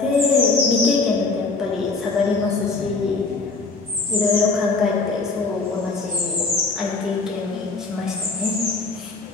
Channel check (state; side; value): quieter; right; 3.9 dB